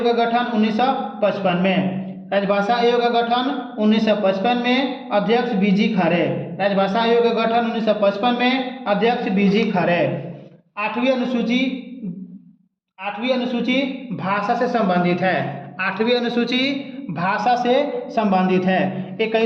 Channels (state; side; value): identical; both; correlation 1.00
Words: का गठन 1955 में। राजभाषा आयोग का गठन 1955 में, अध्यक्ष बीजी खरे। राजभाषा आयोग का गठन 1955 में, अध्यक्ष बीजी खरे। 8वीं अनुसूची भाषा से संबंधित है। 8वीं अनुसूची भाषा से संबंधित है।